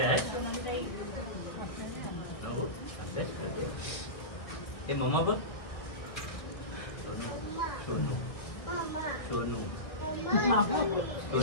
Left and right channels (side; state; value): right; late; 1.6 ms